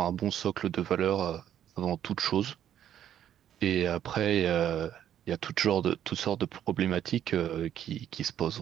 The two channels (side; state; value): left; quieter; 10.5 dB